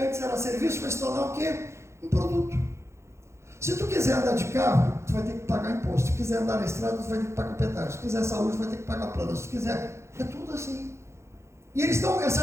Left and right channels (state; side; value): late; left; 0.13 ms